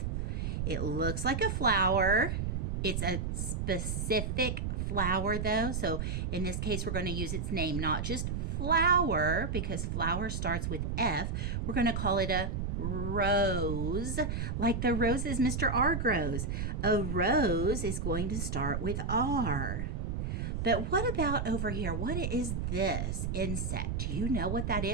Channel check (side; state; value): right; noise; rumble, 1 dB below the sound